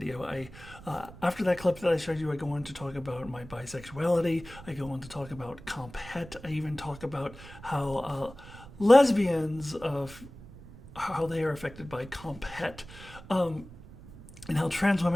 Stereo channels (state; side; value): noise; right; rumble, 17 dB below the sound